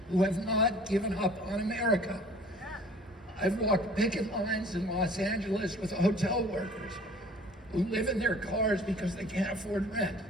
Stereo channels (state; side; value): normal; both; correlation 0.50